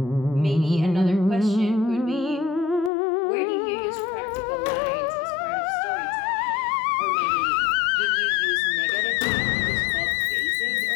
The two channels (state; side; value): drops out; right; at 2.9 s